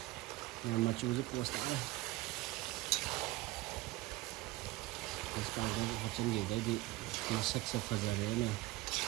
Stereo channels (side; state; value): left; quieter; 19.1 dB